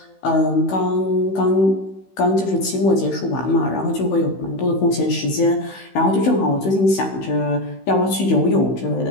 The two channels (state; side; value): late; right; 16 ms